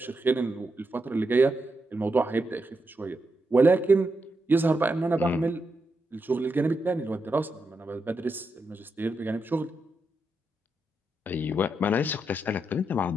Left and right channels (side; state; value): both; normal; correlation 0.85